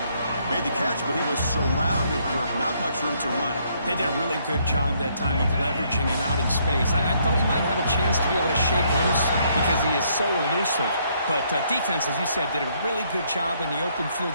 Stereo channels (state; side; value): inverted; both; correlation -0.69